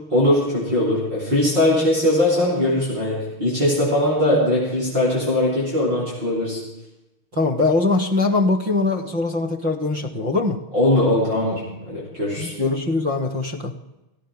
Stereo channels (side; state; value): left; late; 6.4 ms